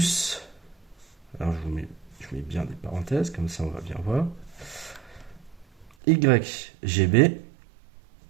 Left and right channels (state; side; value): drops out; left; at 5.9 s